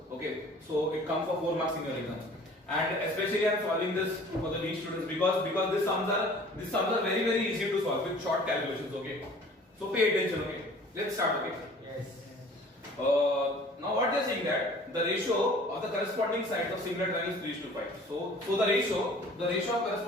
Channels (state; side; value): normal; both; correlation 0.49